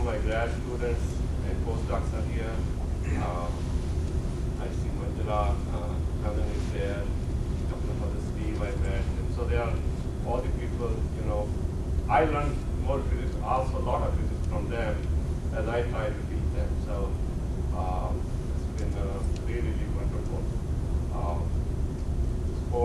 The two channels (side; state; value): both; identical; correlation 1.00